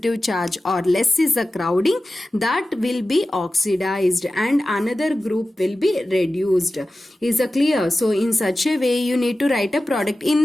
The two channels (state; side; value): normal; both; correlation 0.94